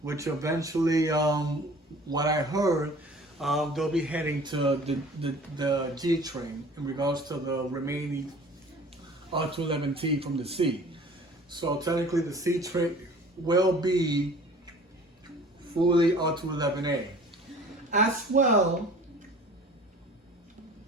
which eventually, what I heard, they'll be heading to the G train in regards to the remaining R211T from the C. So technically the C train will be fully R211A. As well,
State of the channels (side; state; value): both; normal; correlation 0.47